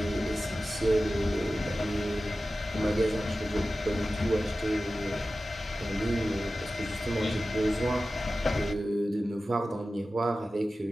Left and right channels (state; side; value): normal; both; correlation 0.94